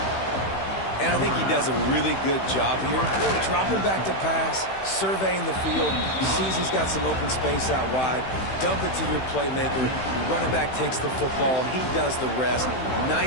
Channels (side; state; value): right; late; 16 ms